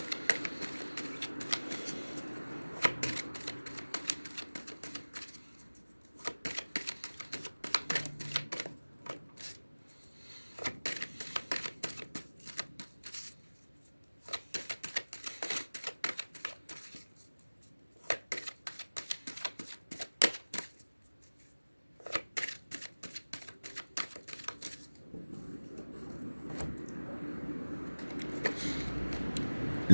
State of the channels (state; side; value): inverted; both; correlation -1.00